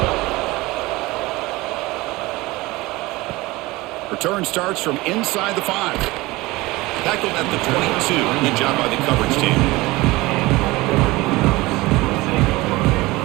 Return starts from inside the 5. Tackled at the 22. Good job by the coverage team.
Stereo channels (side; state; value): left; quieter; 20.7 dB